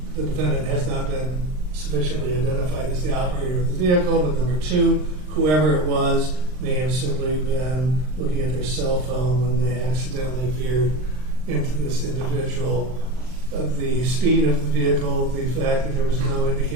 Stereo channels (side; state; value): left; late; 39 ms